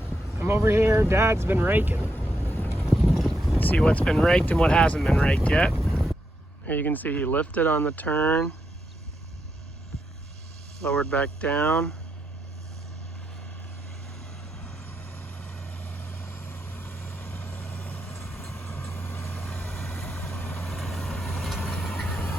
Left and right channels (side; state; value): both; normal; correlation 0.82